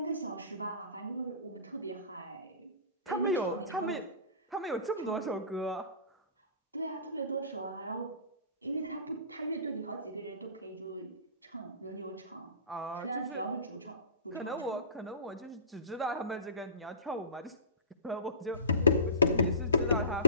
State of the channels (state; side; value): inverted; both; correlation -0.35